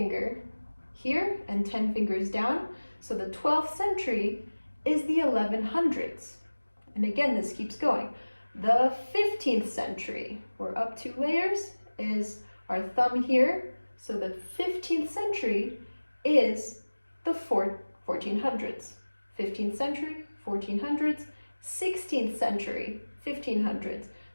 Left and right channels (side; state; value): both; inverted; correlation -1.00